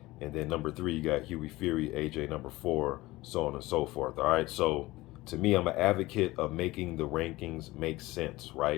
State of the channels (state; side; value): quieter; right; 19.2 dB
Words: And then number 3, you got Hughie Fury, AJ number 4, so on and so forth. All right, so to me, I'm an advocate of making the rankings make sense,